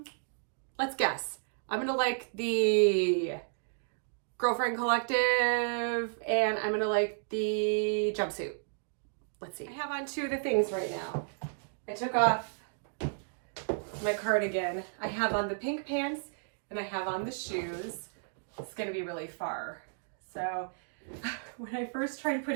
Let's guess. I'm gonna like the Girlfriend Collective, and I'm gonna like the jumpsuit. Let's see. I have on 2 of the things right now. I took off my cardigan. I have on the pink pants and I have on the shoes. It's gonna be really far. So when I first tried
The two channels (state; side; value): silent; left; digital silence